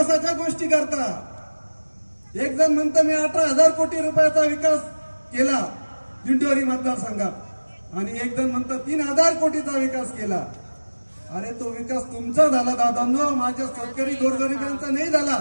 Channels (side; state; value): both; inverted; correlation -1.00